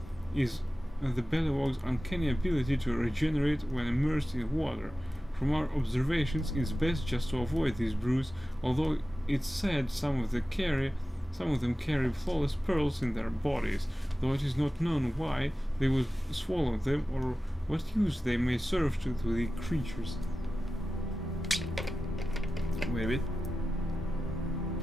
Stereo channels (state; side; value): normal; both; correlation 0.95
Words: is the Bellywog's uncanny ability to regenerate when immersed in water. From our observations, it's best just to avoid these brews, although it's said some of them carry flawless pearls in their bodies, though it is not known why they would swallow them or what use they may serve to the creatures. Wait a bit.